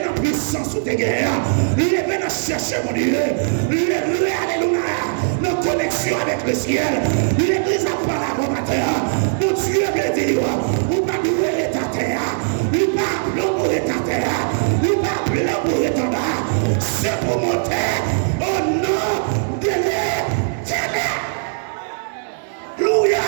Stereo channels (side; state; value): left; silent; digital silence